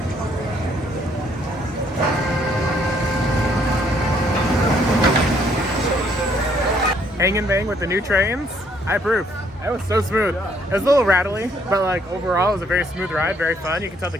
Hang and bang with the new trains. I approve. That was so smooth. It was a little rattly, but like overall it was a very smooth ride, very fun. You can tell the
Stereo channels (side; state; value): both; normal; correlation 0.67